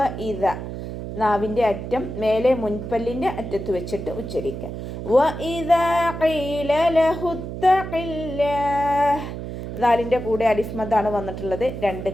ഇത നാവിൻ്റെ അറ്റം മേലെ മുൻപല്ലിൻ്റെ അറ്റത്ത് വെച്ചിട്ട് ഉച്ചരിക്കുക. വ ഇദാ ഖീല ലഹു തഖില്ലാഹ്. ദാലിൻ്റെ കൂടെ അലിഫ് മദ്ദാണ് വന്നിട്ടുള്ളത്. 2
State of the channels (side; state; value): right; noise; hum, 7 dB below the sound